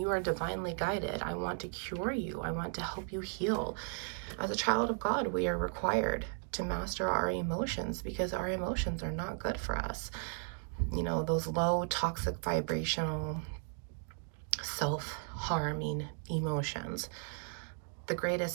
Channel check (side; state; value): left; silent; 54 dB below the other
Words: are divinely guided. I want to cure you. I want to help you heal. As a child of God, we are required to master our emotions, because our emotions are not good for us. You know, those low, toxic, vibrational, self-harming emotions. The